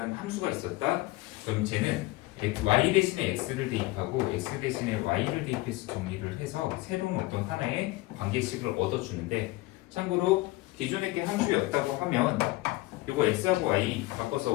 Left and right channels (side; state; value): right; quieter; 19.8 dB